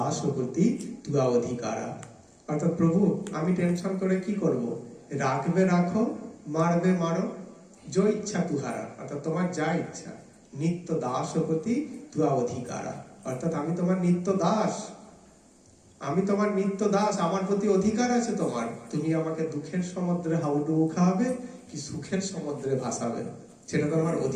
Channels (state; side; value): identical; both; correlation 1.00